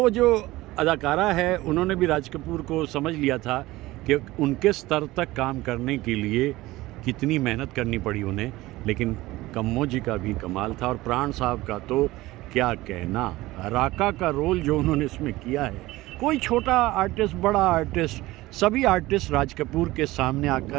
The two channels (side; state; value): left; quieter; 18.5 dB